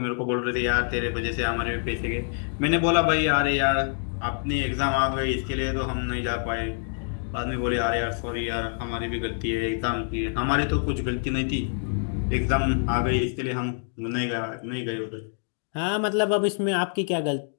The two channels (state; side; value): silent; right; digital silence